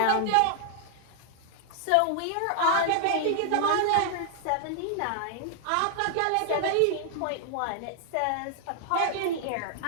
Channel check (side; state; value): both; different; correlation 0.00